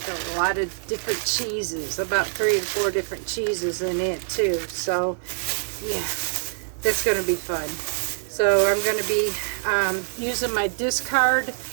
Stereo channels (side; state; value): left; silent; digital silence